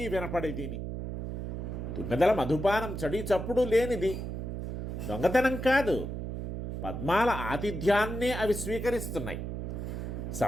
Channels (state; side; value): noise; right; hum, 5 dB below the sound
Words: వినపడేదిని. తుమ్మెదల మధుపానం చడి చప్పుడు లేనిది, దొంగతనం కాదు, పద్మాల ఆతిథ్యాన్నే అవి స్వీకరిస్తున్నాయి.